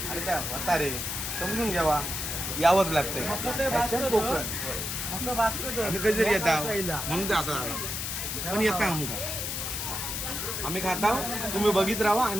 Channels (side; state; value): left; noise; hiss, 3 dB below the sound